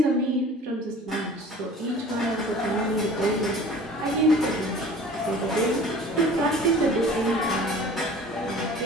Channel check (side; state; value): both; normal; correlation 0.44